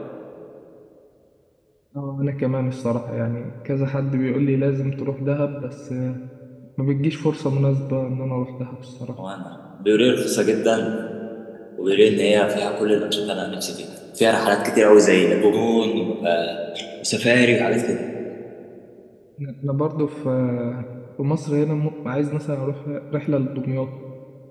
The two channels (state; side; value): identical; both; correlation 1.00